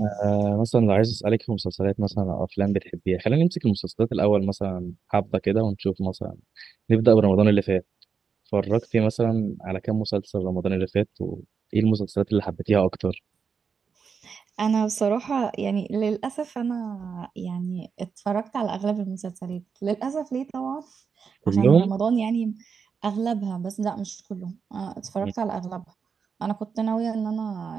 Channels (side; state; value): left; quieter; 6.0 dB